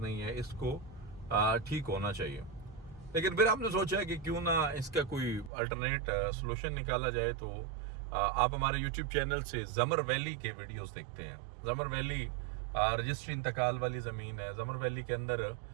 है, इसको ठीक होना चाहिए। लेकिन फिर हमने सोचा कि क्यों ना इसका कोई अल्टरनेट सोल्यूशन निकाला जाए। तो आप हमारे YouTube चैनल से ज़मर वैली के वीडियोस देखते हैं। ज़मर वैली रजिस्ट्री इंतकाल वाली ज़मीन है। ज़मर वैली के अंदर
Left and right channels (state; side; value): drops out; left; at 5.5 s